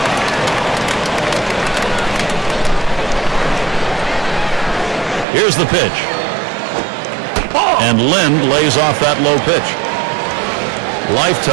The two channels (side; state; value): left; drops out; at 5.2 s